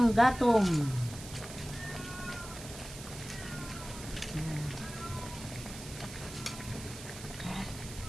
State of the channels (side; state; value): right; noise; hiss, 13 dB below the sound